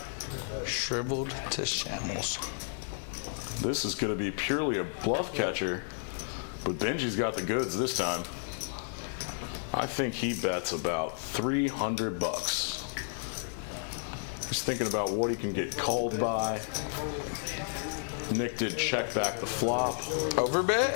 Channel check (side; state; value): right; silent; digital silence